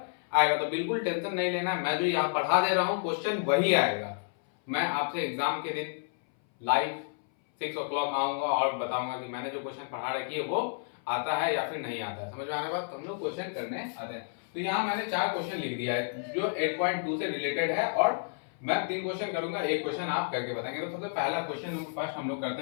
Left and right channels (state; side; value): silent; right; 57 dB below the other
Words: आएगा। तो बिल्कुल टेंशन नहीं लेना, मैं जो यहाँ पढ़ा दे रहा हूँ क्वेश्चन वही आएगा। मैं आपसे एग्जाम के दिन लाइव 6 o'clock आऊंगा और बताऊंगा कि मैंने जो क्वेश्चन पढ़ा रखी है वो आता है या फिर नहीं आता है। समझ में आने बाद तो हम लोग क्वेश्चन करने आते हैं। तो यहाँ मैंने 4 क्वेश्चन लिख दिया है जो 8.2 से रिलेटेड है, और मैं 3 क्वेश्चन करूंगा, एक क्वेश्चन आप करके बताएंगे। तो सबसे पहला क्वेश्चन फर्स्ट हम लोग